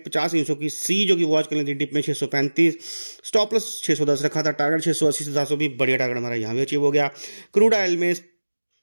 50 की सी जो कि वॉच करनी थी डिप में 635, स्टॉप लॉस 610 रखा था। टारगेट 680 से 700 भी बढ़िया टारगेट हमारा यहाँ भी अचीव हो गया। क्रूड ऑयल में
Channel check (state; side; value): inverted; both; correlation -1.00